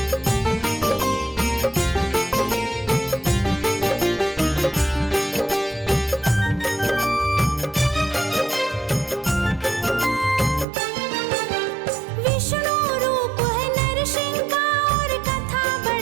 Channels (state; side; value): drops out; left; at 10.7 s